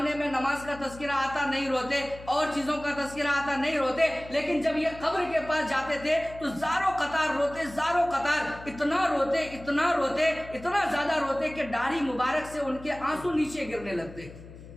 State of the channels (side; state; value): left; noise; hum, 16 dB below the sound